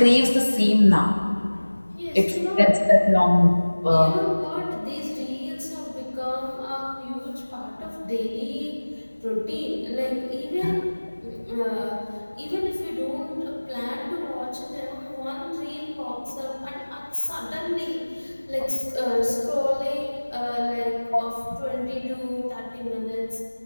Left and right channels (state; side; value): inverted; both; correlation -1.00